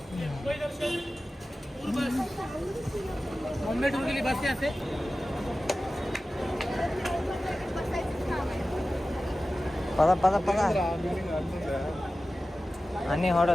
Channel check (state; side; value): normal; both; correlation 0.95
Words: పద పద పద. అన్ని